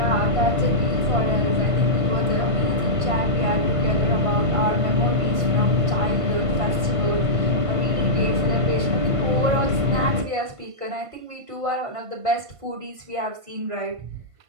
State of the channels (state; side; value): late; left; 1.5 ms